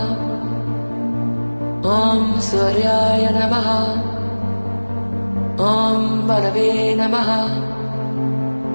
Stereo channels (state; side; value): inverted; both; correlation -1.00